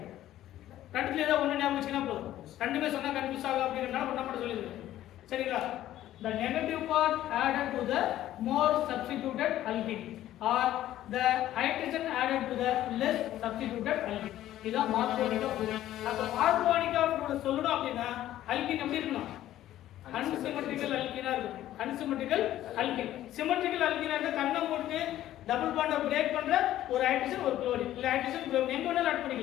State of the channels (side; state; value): right; quieter; 13.3 dB